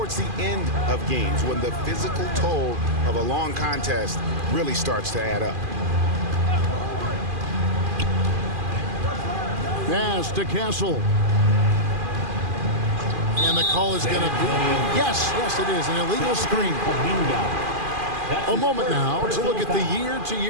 the end of games when the physical toll of a long contest really starts to add up. Pass to Castle. And the call is going to be, yes, it is, an illegal screen. A moment now to look at the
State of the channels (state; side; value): late; left; 2.4 ms